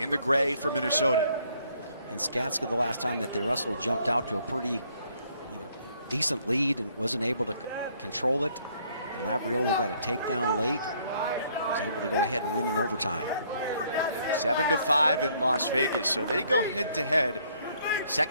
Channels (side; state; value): both; inverted; correlation -0.65